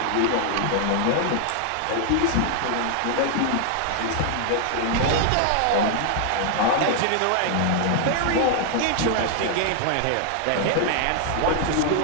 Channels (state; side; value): different; both; correlation 0.00